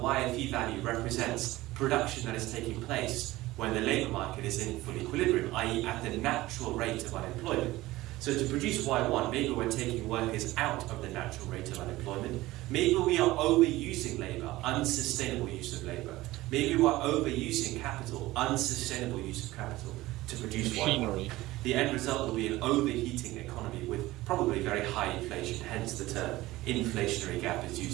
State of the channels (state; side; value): quieter; left; 18.0 dB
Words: value represents production that is taking place when the labour market is in full equilibrium, i.e. at the natural rate of unemployment. So to produce Y1, maybe we're taking workers out of the natural rate of unemployment. Maybe we are overusing labour, unsustainable use of labour. Maybe we're overusing capital, unsustainable use of capital, to produce machinery. Y1. The end result will be an overheating economy with probably very high inflation, hence the term inflationary gap is